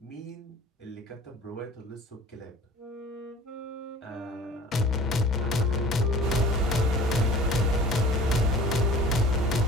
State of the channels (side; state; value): both; normal; correlation 0.46